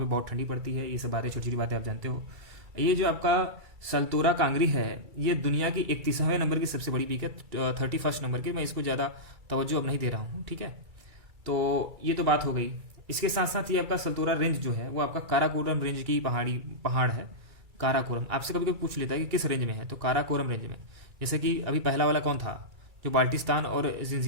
बहुत ठंडी पड़ती है। ये सब बातें, छोटी छोटी बातें आप जानते हो। ये जो आपका सल्तोरा कांगरी है, ये दुनिया की 31वें नंबर की सबसे बड़ी पीक है, 31st नंबर की। मैं इसको ज़्यादा तवज्जो अब नहीं दे रहा हूँ, ठीक है। तो ये तो बात हो गई। इसके साथ साथ ये आपका सल्तोरा रेंज जो है वो आपका काराकोरम रेंज की पहाड़ है। काराकोरम आपसे कभी कभी पूछ लेता है कि किस रेंज में है, तो काराकोरम रेंज में। जैसे कि अभी पहला वाला कौन था, जो बाल्टिस्तान और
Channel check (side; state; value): left; late; 2.3 ms